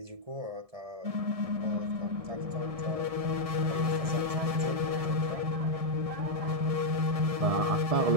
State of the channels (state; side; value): late; left; 1.7 ms